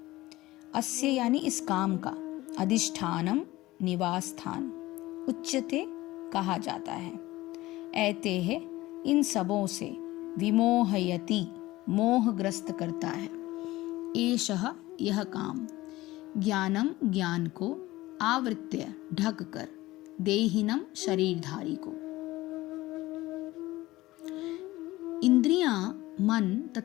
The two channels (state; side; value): quieter; right; 18.1 dB